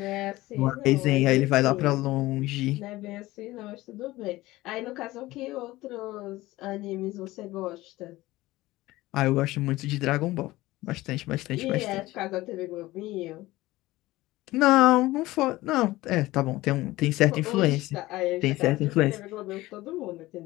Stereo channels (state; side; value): quieter; right; 18.2 dB